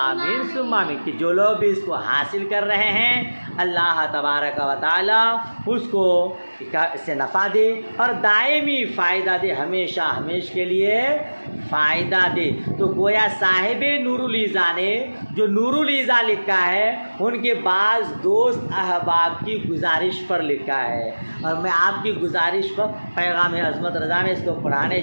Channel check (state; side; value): inverted; both; correlation -1.00